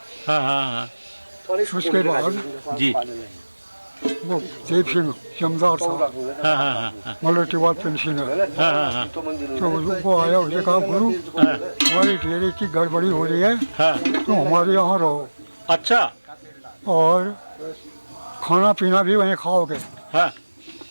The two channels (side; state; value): both; inverted; correlation -1.00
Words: हाँ, हाँ, हाँ, उसके बाद जी, वो देव सिंह जमदार था, हाँ, हाँ, हाँ, हाँ, मल्टीवाल पेंशनर। हाँ, हाँ, हाँ, तो वो आया, उसने कहा गुरु हमारी डेयरी की गड़बड़ी हो रही है, हाँ, तो हमारे यहाँ रहो अच्छा, और खाना पीना भी वहीं खाओगे। हाँ,